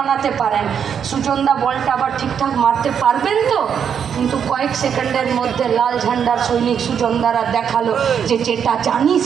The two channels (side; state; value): left; quieter; 7.8 dB